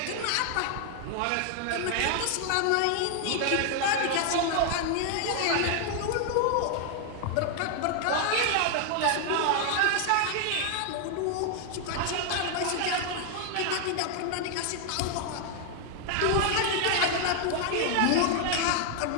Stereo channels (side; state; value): both; different; correlation 0.00